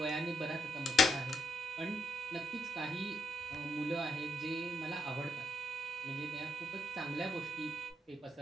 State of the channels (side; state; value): both; normal; correlation 0.76